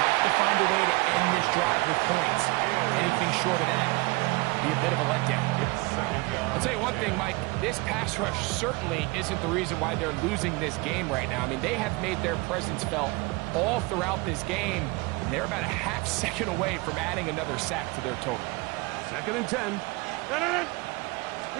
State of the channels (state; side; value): quieter; left; 25.1 dB